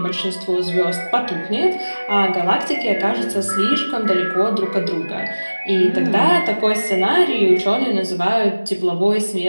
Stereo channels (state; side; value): inverted; both; correlation -1.00